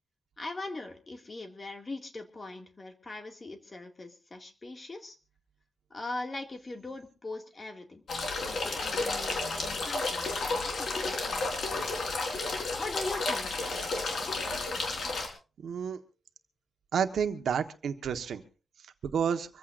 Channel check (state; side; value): normal; both; correlation 0.78